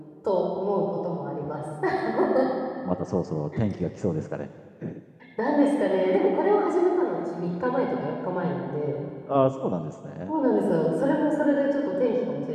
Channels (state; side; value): identical; both; correlation 1.00